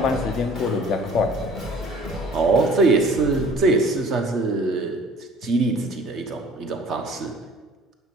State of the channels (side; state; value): both; normal; correlation 0.50